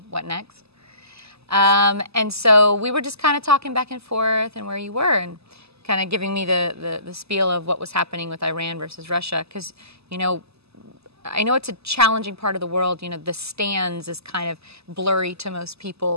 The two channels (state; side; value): late; left; 0.79 ms